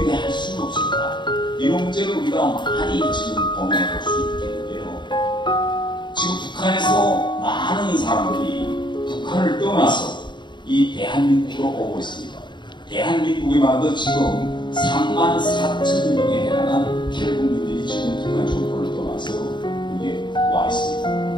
할 수는 없을까? 이런 문제를 우리가 많이 지금 고민해 볼 수 있겠는데요. 지금 북한에서 많은 사람들이 북한을 떠나서 이 대한민국으로 오고 있습니다. 대한민국이 말도 지금 34,000명에 해당한 탈북민들이 지금 북한 정권을 떠나서 여기에 와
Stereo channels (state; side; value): late; right; 0.22 ms